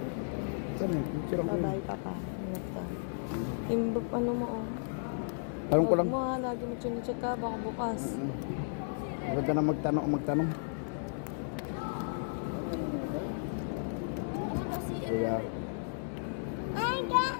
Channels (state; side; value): silent; right; digital silence